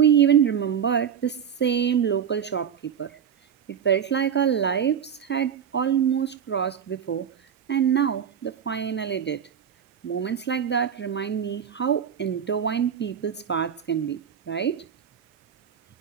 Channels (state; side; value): quieter; left; 8.2 dB